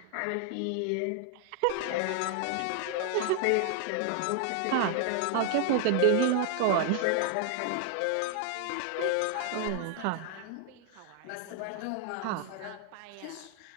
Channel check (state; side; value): different; both; correlation 0.00